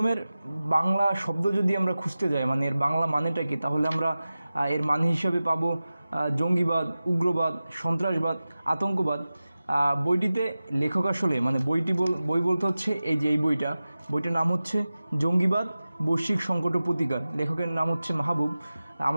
বাংলা শব্দ যদি আমরা খুঁজতে যাই, মানে এর বাংলা মানেটা কি, তাহলে আমরা এর মানে হিসাবে পাবো জঙ্গিবাদ, উগ্রবাদ, সন্ত্রাসবাদ, আতঙ্কবাদ। বইটিতে লেখক আসলে মানে বই বলতে হচ্ছে এই যে এই বইটার নাম হচ্ছে জঙ্গিবাদ, বৈশ্বিক সংকট ও প্রতিকার। লেখকের নাম হচ্ছে মাহবুব।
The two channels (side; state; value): both; inverted; correlation -0.95